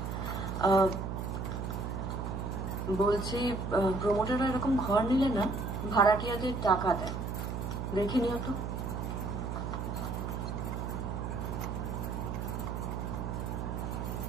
বলছি প্রমোটাররা এরকম ঘর নিলে না ভাড়াটিয়াদের টাকা দেয়, দেখে নিও তো।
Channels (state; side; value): noise; right; hum, 4 dB below the sound